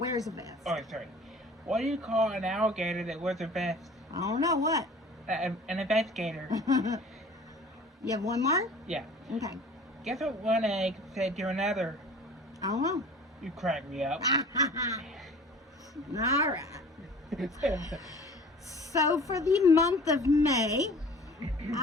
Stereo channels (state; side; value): normal; both; correlation 0.45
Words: a vest. Oh, sorry. What do you call an alligator that wears a vest? I don't know what. An investigator. You have one more? Yeah. Okay. Guess what one egg said to another? I don't know. You crack me up. All right. So for the month of May,